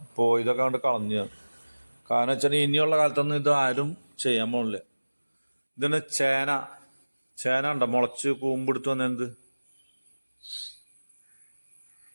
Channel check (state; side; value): inverted; both; correlation -1.00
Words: ഇതൊക്കെ കൊണ്ട് കളഞ്ഞ്. കാരണം വെച്ചാൽ ഇനിയുള്ള കാലത്തൊന്നും ഇത് ആരും ചെയ്യാൻ പോണില്ല. ഇതിന് ചേന ഉണ്ടോ മുളച്ച് കൂമ്പെടുത്ത് വന്ന എന്ത്